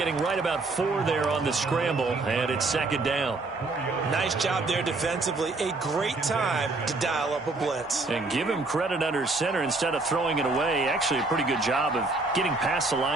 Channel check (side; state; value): left; quieter; 3.3 dB